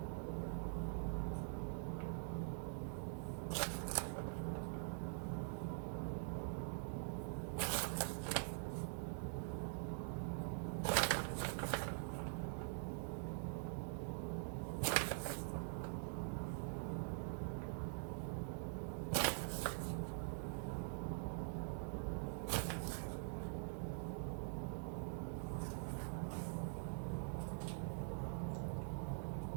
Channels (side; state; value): left; silent; digital silence